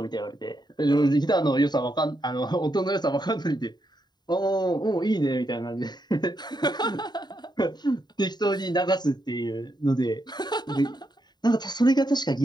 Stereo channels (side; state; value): right; late; 0.20 ms